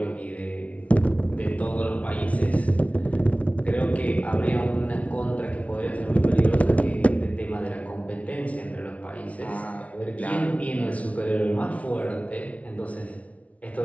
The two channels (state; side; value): late; right; 0.066 ms